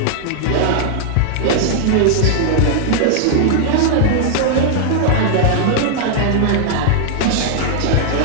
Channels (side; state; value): both; different; correlation -0.01